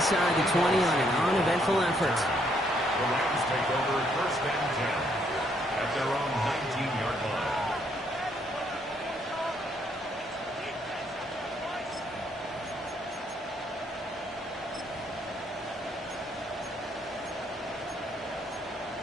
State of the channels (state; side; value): normal; both; correlation 0.71